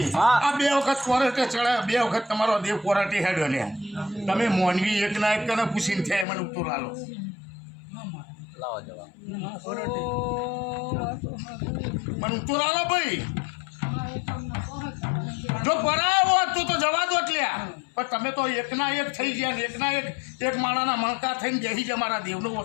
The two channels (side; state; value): right; drops out; at 6.2 s